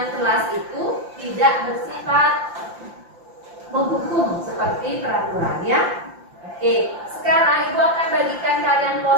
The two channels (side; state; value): left; late; 5.8 ms